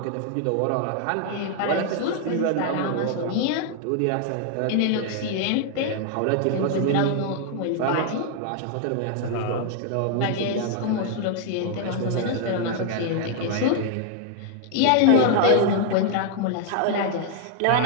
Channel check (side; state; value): both; different; correlation 0.00